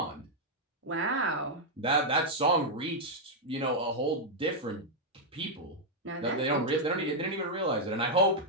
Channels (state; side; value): normal; both; correlation -0.03